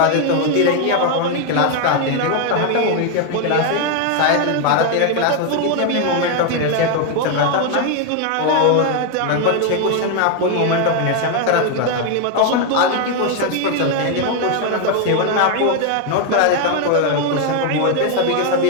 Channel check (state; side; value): different; both; correlation 0.01